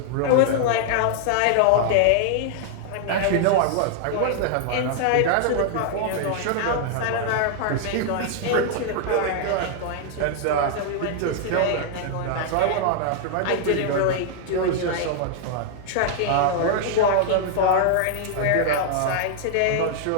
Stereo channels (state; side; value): different; both; correlation -0.01